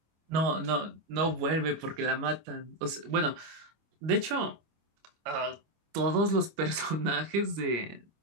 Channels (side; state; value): left; late; 25 ms